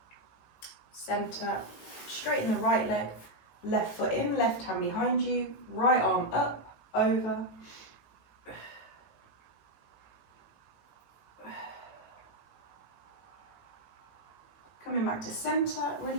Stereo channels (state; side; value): late; right; 18 ms